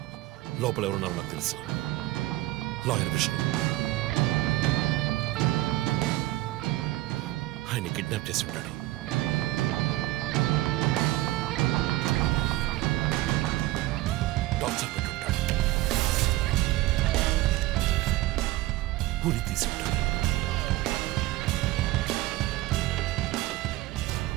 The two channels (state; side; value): quieter; left; 17.4 dB